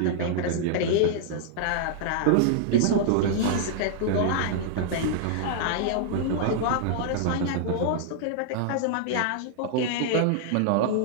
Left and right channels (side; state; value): both; different; correlation -0.01